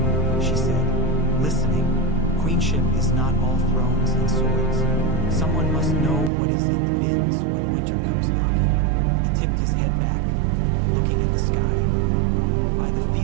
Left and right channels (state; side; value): drops out; left; at 6.3 s